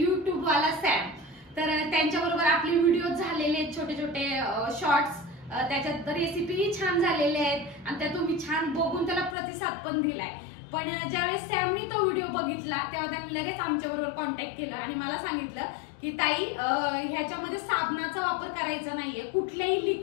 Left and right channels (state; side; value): drops out; right; at 9.3 s